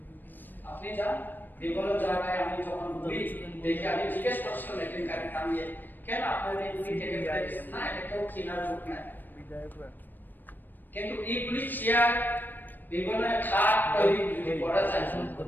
আপনি যান বিভিন্ন জায়গায়, আমি যখন ঘুরি দেখি, আমি জিজ্ঞেস করছিলাম একদিন গাড়ি থামিয়ে, কেন আপনাদের এগুলি কেটে ফেলে দিচ্ছেন? না, এটা কেউ কেনার লোক নাই। কিন্তু এইগুলি চেয়ার বিভিন্ন খাট তৈরি যদি করা যায়,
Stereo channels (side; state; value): right; late; 0.091 ms